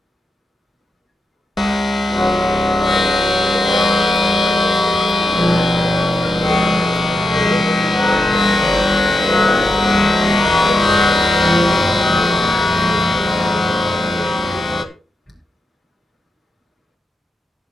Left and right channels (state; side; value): normal; both; correlation 0.88